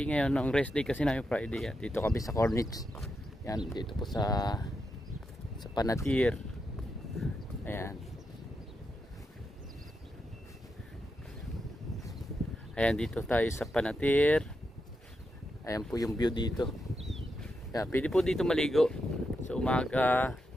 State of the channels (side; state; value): both; normal; correlation 0.85